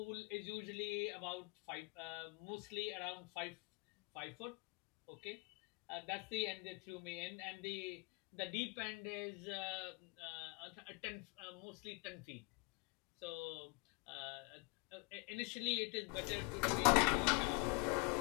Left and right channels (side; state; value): right; quieter; 29.2 dB